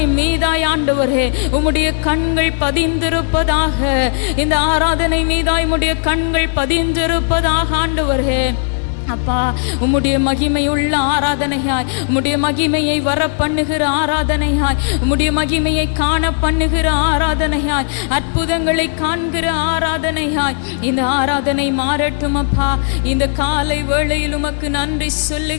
மீதாய் ஆண்டவரே உம்முடைய கண்கள் பதிந்திருப்பதாக. இந்த ஆராதனை மீதாய் உம்முடைய கண்கள் பதிந்திருப்பதாக ஆண்டவரே. அப்பா, உம்முடைய மகிமையுள்ள ஆராதனையாய், உம்முடைய மகிமையை வர பண்ணுகிற ஆராதனையாய், உம்முடைய மகிமையை காண பண்ணுகிற ஆராதனையாய், அற்புதங்களை காண்கிற ஆராதனையாய் இந்த ஆராதனை மாறட்டும் அப்பா. இந்த காலை வேளையில் உமக்கு நன்றி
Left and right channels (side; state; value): right; silent; 69 dB below the other